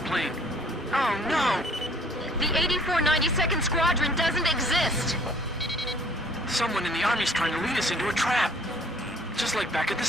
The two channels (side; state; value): both; normal; correlation 0.56